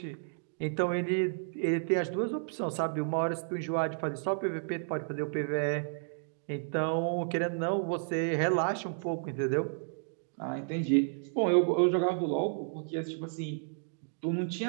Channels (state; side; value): silent; left; digital silence